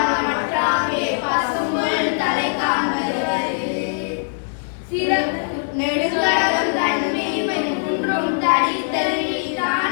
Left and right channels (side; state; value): right; silent; digital silence